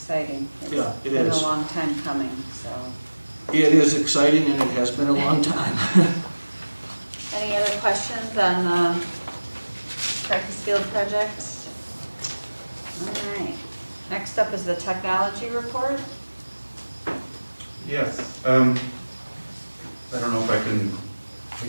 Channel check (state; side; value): inverted; both; correlation -1.00